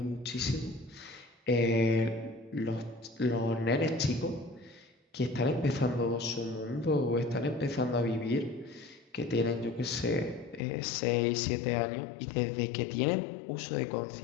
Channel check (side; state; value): right; drops out; at 10.6 s